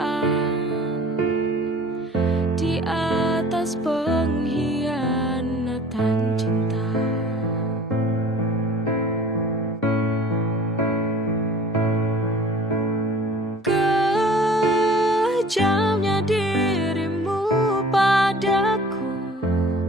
di atas pengkhianatan cinta. Kejamnya dirimu padaku,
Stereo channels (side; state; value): both; normal; correlation 0.47